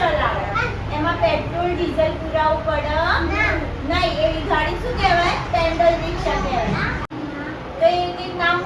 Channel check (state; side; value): identical; both; correlation 1.00